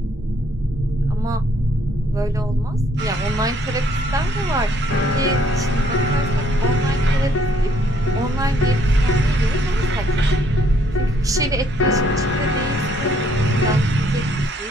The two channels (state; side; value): normal; both; correlation 0.66